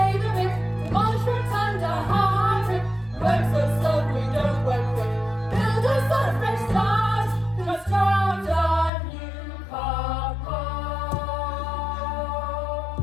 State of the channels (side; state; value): right; drops out; at 8.9 s